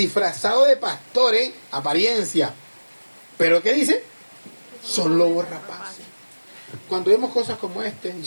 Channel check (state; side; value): inverted; both; correlation -1.00